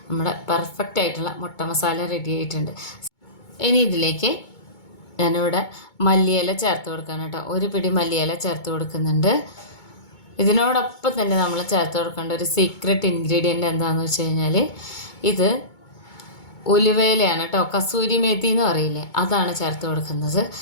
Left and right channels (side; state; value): right; late; 2.2 ms